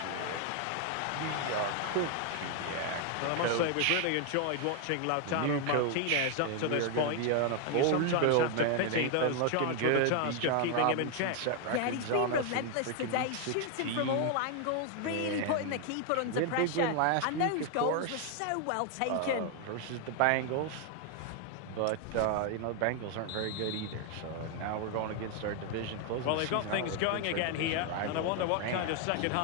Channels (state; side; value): different; both; correlation 0.00